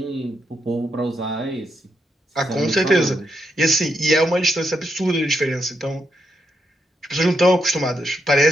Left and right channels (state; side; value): normal; both; correlation 0.81